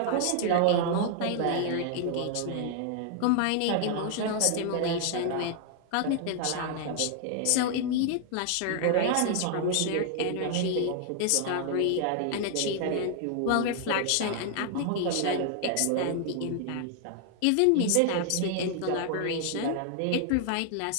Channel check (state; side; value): different; both; correlation 0.00